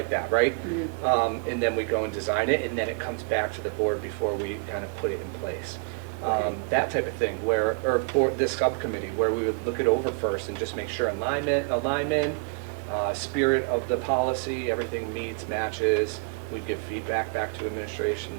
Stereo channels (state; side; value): quieter; left; 32.6 dB